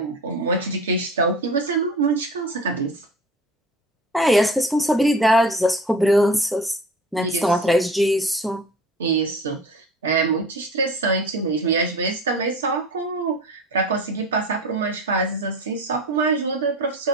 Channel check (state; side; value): normal; both; correlation 0.38